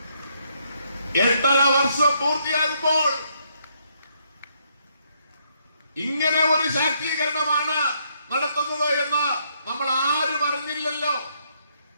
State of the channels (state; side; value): inverted; both; correlation -0.73